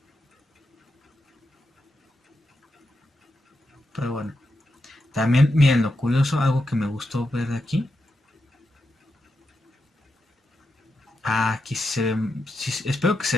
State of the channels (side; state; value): both; normal; correlation 0.86